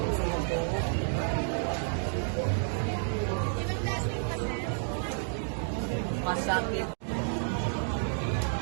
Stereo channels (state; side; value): silent; left; 57 dB below the other